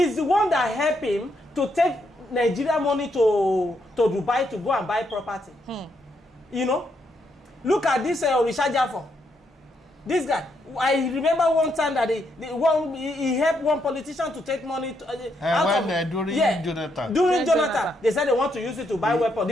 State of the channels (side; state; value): both; normal; correlation 0.77